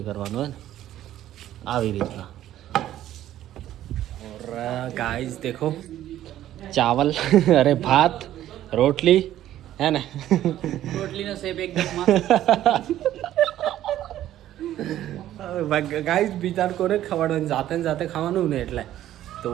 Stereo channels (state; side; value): quieter; left; 12.8 dB